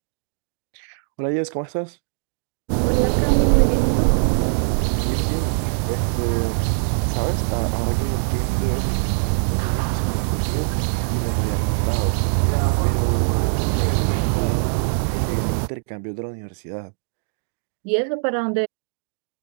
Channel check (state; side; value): silent; left; digital silence